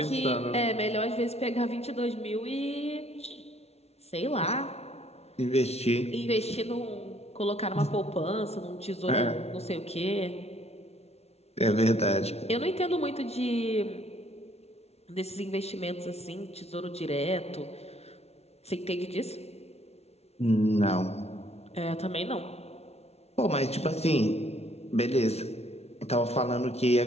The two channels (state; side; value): late; right; 0.31 ms